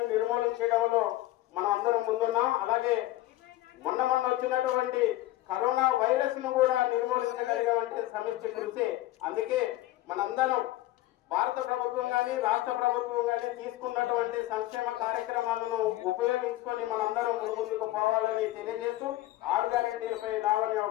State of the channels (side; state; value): right; quieter; 16.2 dB